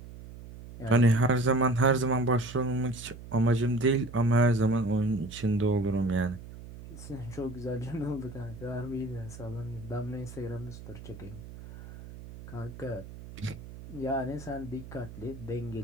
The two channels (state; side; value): noise; right; hum, 14 dB below the sound